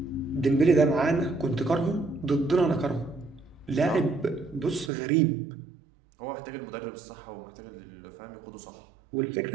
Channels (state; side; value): drops out; left; at 4.9 s